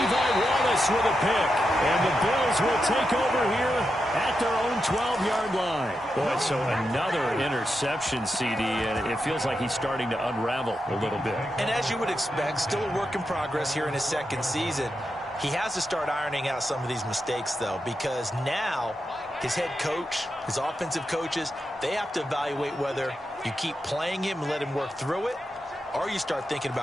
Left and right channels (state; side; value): normal; both; correlation 0.87